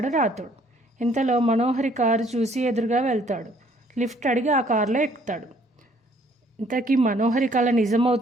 రాతోడు. ఇంతలో మనోహరి కారు చూసి ఎదురుగా వెళ్తాడు. లిఫ్ట్ అడిగి ఆ కారులో ఎక్కుతాడు. ఇంతకీ మనోహరి కళ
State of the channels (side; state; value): both; normal; correlation 0.62